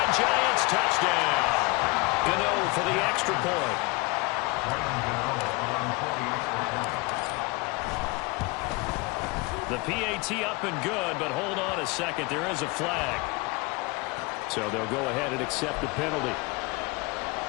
Giants touchdown. Gano for the extra point. The PAT up and good, but hold on a second. There is a flag. So they'll go ahead and accept the penalty.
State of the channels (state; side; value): quieter; right; 25.2 dB